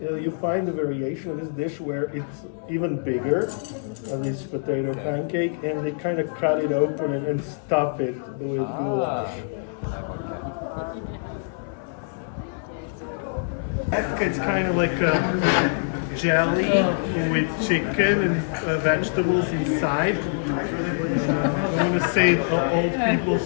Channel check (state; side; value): silent; right; digital silence